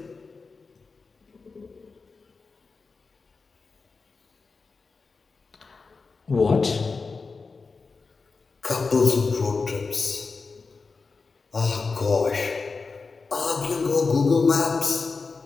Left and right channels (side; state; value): right; quieter; 4.4 dB